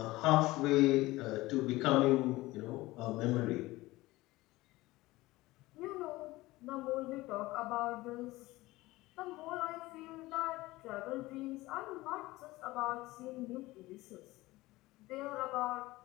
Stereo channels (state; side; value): quieter; right; 19.3 dB